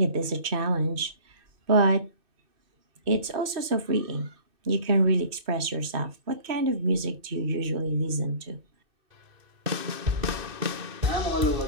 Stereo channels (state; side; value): late; left; 2.6 ms